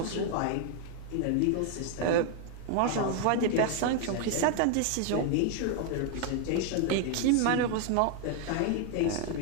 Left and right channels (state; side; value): different; both; correlation 0.00